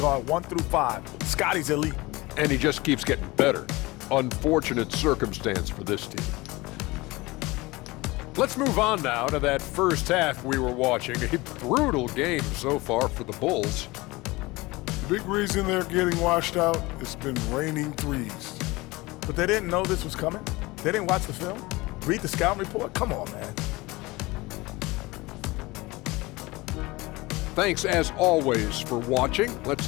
1 through 5. Scotty's elite. And he just keeps getting better. Unfortunate circumstance for this team. Let's move on now to that first half we were watching. A brutal game so far for the Bulls. Big reason they're getting washed out, it's been raining threes. But they didn't know this was coming. They didn't watch the film. Read the scouting report. Come on, man. Thanks as always for watching. Let's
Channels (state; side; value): quieter; right; 21.9 dB